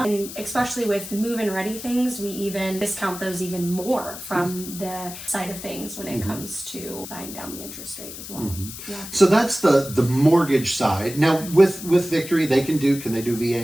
And especially with move-in ready things, we even discount those even more from the side of things when it comes to buying down the interest rate as well. So that's the mortgage side. Now with Victory, can they do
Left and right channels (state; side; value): noise; left; hiss, 11 dB below the sound